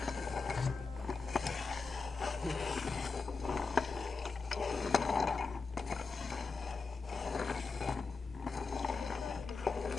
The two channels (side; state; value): right; quieter; 4.4 dB